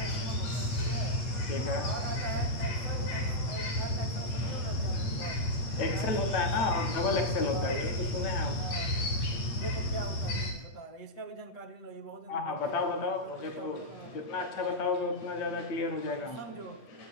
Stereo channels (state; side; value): late; right; 8.4 ms